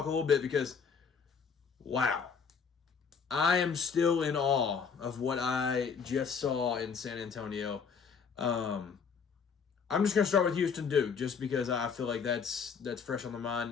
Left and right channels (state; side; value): quieter; right; 6.1 dB